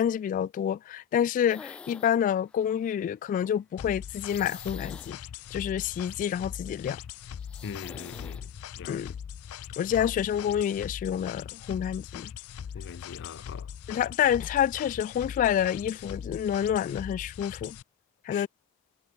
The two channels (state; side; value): quieter; right; 9.0 dB